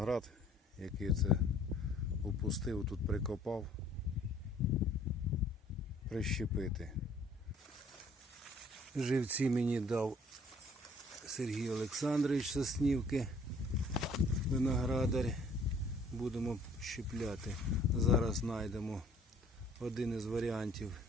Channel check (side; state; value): both; normal; correlation 0.58